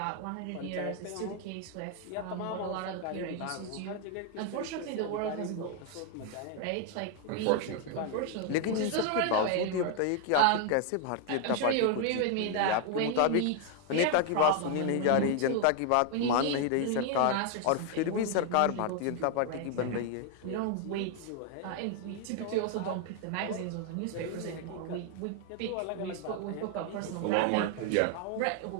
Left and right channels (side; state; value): both; different; correlation 0.00